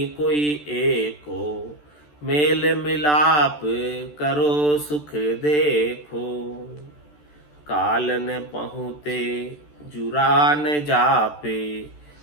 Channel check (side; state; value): right; late; 14 ms